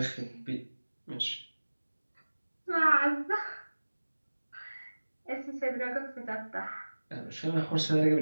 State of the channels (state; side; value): inverted; both; correlation -1.00